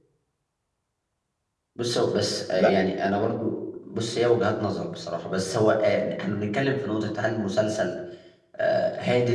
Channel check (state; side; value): identical; both; correlation 1.00